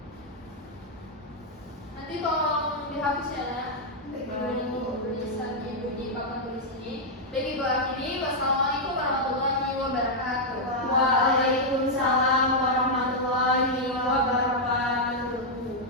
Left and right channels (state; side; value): normal; both; correlation -0.03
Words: Nanti tolong dihapus ya, Nak. Ibu tulisan Ibu di papan tulis ini. Baik, Ibu akhiri. Wassalamualaikum warahmatullahi wabarakatuh.